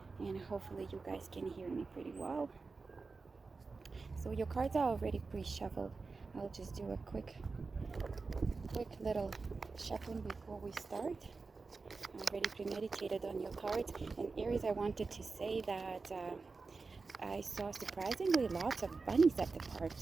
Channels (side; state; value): left; quieter; 4.2 dB